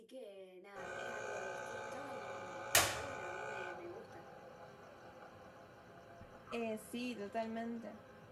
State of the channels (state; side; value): identical; both; correlation 1.00